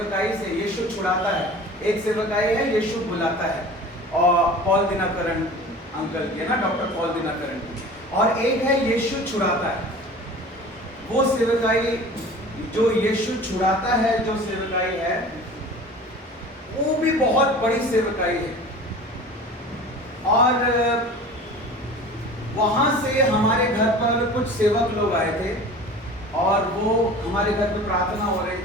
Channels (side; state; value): both; normal; correlation 0.40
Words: से यीशु छुड़ाता है, एक सेवकाई है यीशु बुलाता है, और पॉल दिनकरन अंकल की है ना, डॉक्टर पॉल दिनकरन की, और एक है यीशु छुड़ाता है। वो सेवकाई जो यीशु छुड़ाता है, जो सेवकाई है वो भी बहुत बड़ी सेवकाई है, और वहां से हमारे घर पर कुछ सेवक लोग आए थे और वो हमारे घर पे प्रार्थना हो रही